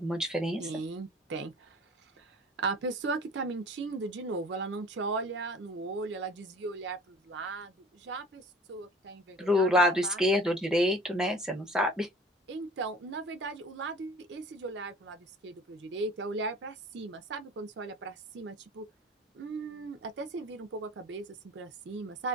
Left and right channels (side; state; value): both; normal; correlation 0.45